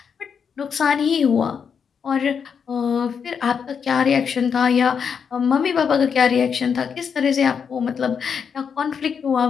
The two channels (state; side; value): quieter; right; 6.7 dB